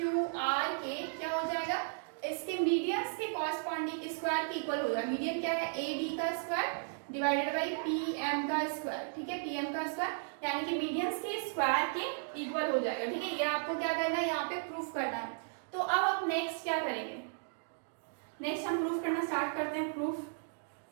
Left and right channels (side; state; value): left; silent; digital silence